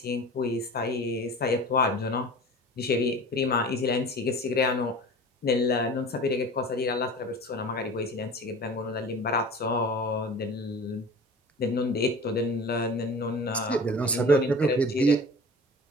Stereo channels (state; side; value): normal; both; correlation 0.39